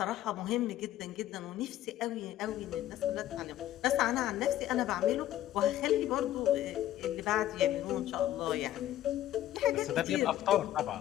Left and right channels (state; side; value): quieter; right; 13.1 dB